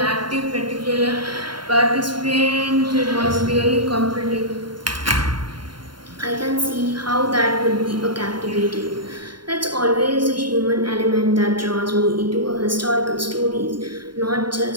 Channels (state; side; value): late; left; 0.72 ms